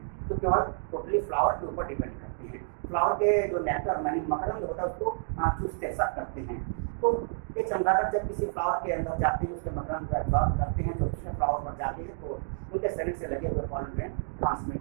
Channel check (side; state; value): left; silent; digital silence